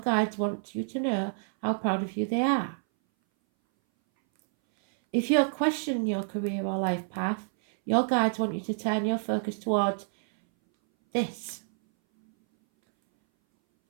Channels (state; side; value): silent; left; 59 dB below the other